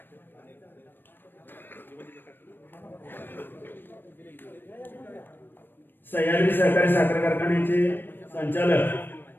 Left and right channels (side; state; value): right; late; 0.095 ms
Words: सह्याद्री सहकारी साखर कारखान्याचे